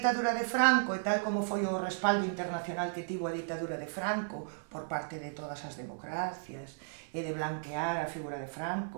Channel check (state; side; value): silent; left; digital silence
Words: de Franco e tal como foi o respaldo internacional que tivo a ditadura de Franco por parte de todas as democracias e de blanquear a figura de